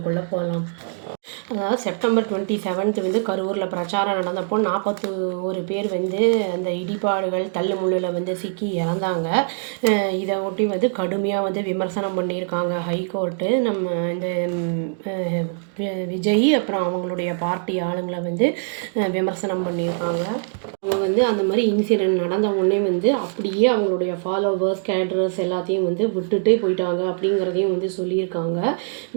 போகலாம். அதாவது செப்டம்பர் 27 கரூரில் பிரச்சாரம் நடந்தப்போ 41 பேர் அந்த இடிபாடுகள் தள்ளுமுள்ளில் சிக்கி இறந்தாங்க. இதை ஒட்டி கடுமையாக விமர்சனம் பண்ணியிருக்காங்க ஹைகோர்ட்டு. நம்ம இந்த விஜய் அப்புறம் அவங்களுடைய பார்ட்டி ஆளுங்களை விமர்சனம் பண்ணியிருக்காங்க. அவங்க அந்த மாதிரி இன்சிடெண்ட் நடந்த உடனே அப்படியே அவங்களுடைய ஃபாலோவர்ஸ் கேடரர்ஸ் எல்லாத்தையும் விட்டுட்டே போயிட்டாங்க அப்படிங்கிறதையும் சொல்லியிருக்காங்க.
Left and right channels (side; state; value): left; silent; digital silence